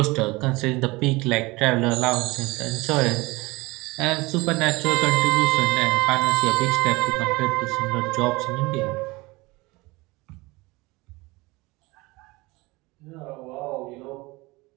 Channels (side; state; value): left; quieter; 22.9 dB